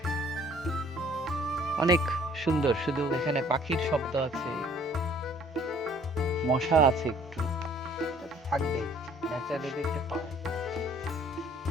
অনেক সুন্দর। শুধু এখানে পাখির শব্দ আছে, মশা আছে একটু, থাকবে, ন্যাচারালি দেখতে পাওয়া।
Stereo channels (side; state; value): both; normal; correlation 0.57